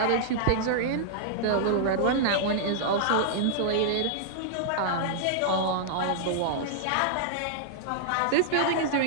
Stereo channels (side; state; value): both; different; correlation -0.01